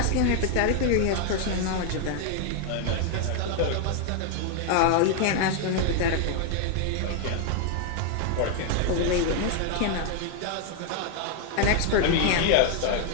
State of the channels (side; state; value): both; different; correlation 0.00